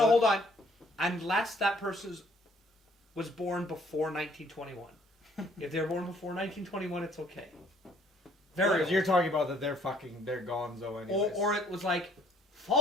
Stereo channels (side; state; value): both; normal; correlation 0.62